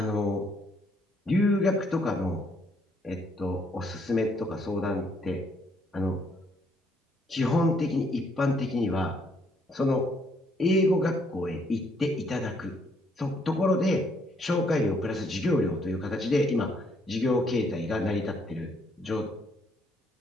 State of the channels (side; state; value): both; normal; correlation 0.69